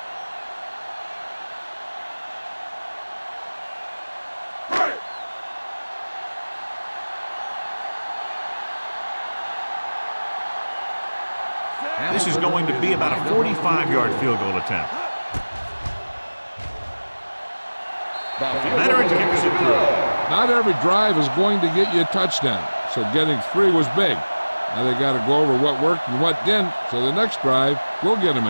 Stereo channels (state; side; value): inverted; both; correlation -1.00